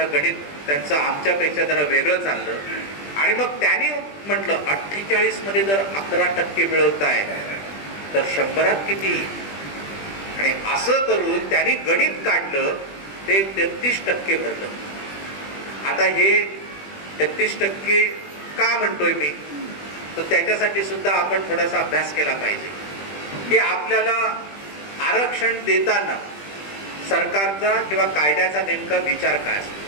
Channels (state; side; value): late; right; 20 ms